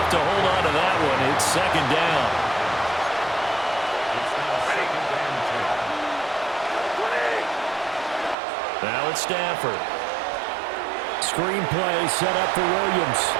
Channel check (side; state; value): left; drops out; at 8.3 s